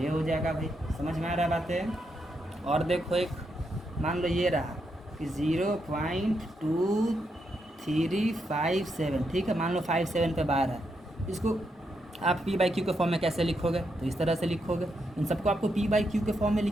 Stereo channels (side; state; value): both; normal; correlation 0.81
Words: हो जाएगा भाई, समझ में आ रहा बातें। और देखो एक मान लो ये रहा कि 0.2357, ठीक है, मान लो 57 पे बार है, इसको आप P/Q के फॉर्म में कैसे लिखोगे, तो इस तरह से लिखोगे। इन सबको आपको P/Q के फॉर्म में